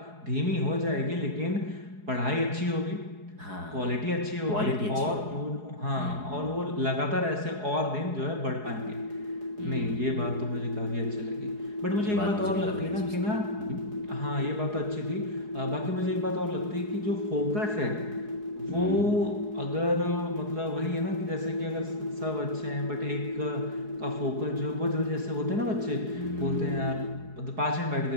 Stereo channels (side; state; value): left; late; 4.8 ms